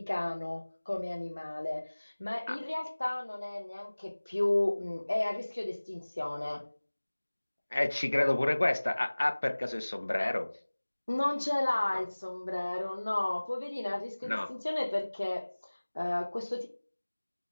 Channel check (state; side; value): inverted; both; correlation -1.00